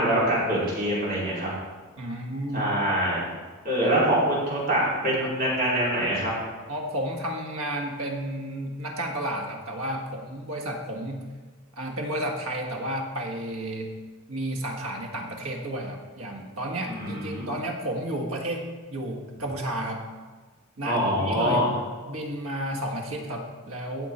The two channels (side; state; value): both; normal; correlation 0.13